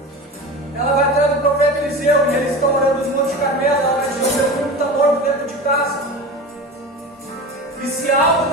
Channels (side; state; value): both; normal; correlation 0.31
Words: Ela vai atrás do profeta Eliseu, e eles estão orando no Monte Carmelo. Ela vai dizer: o meu filho está morto dentro de casa. E se há algo